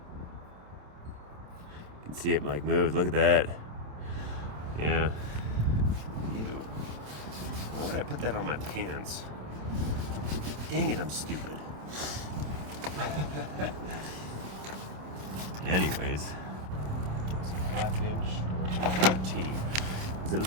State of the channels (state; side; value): late; left; 27 ms